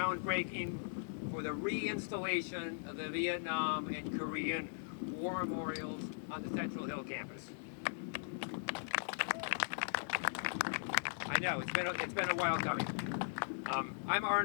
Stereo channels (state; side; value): silent; right; digital silence